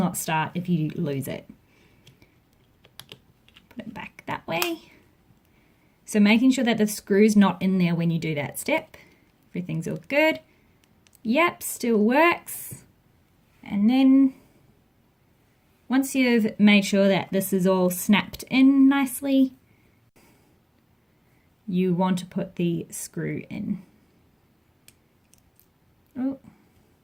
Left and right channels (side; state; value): both; identical; correlation 1.00